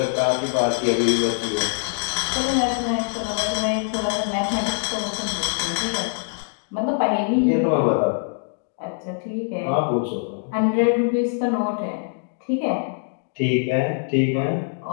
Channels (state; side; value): silent; right; 63 dB below the other